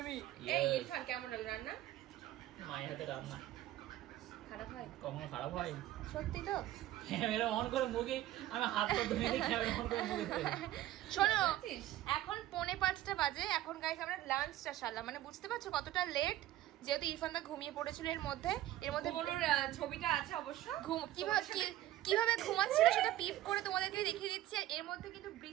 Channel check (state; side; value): quieter; left; 14.4 dB